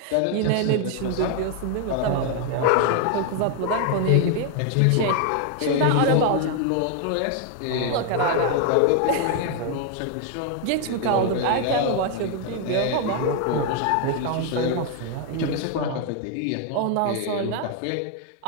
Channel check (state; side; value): different; both; correlation 0.00